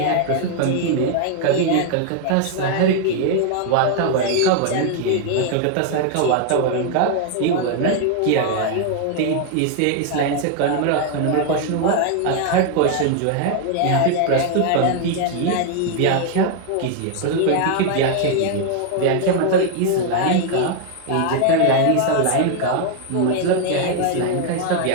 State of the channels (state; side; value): different; both; correlation 0.00